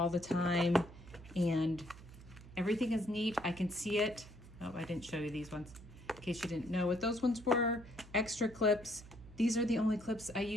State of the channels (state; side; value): noise; right; hum, 18 dB below the sound